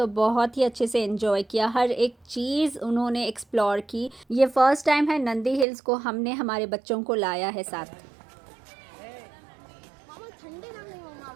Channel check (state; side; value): drops out; left; at 5.7 s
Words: बहुत ही अच्छे से एंजॉय किया, हर एक चीज़ उन्होंने एक्सप्लोर की। ये फर्स्ट टाइम है नंदी हिल्स को हमने हमारे बच्चों को लाया है साथ।